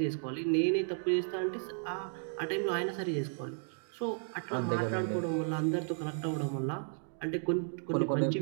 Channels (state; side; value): silent; left; 55 dB below the other